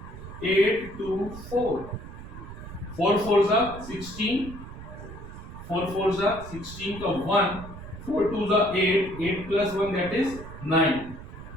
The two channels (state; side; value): noise; right; rumble, 13 dB below the sound